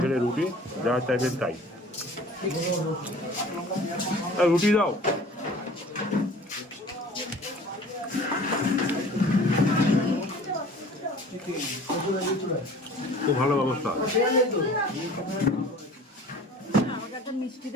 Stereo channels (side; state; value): both; normal; correlation 0.46